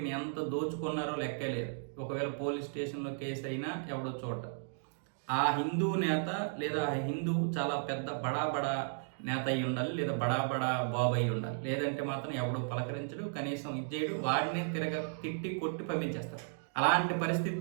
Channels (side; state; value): left; silent; digital silence